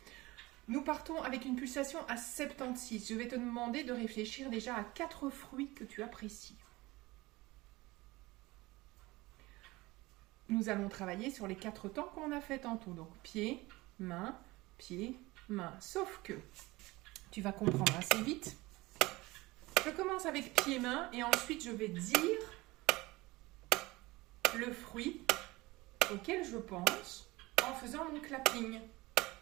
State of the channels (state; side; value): quieter; left; 20.9 dB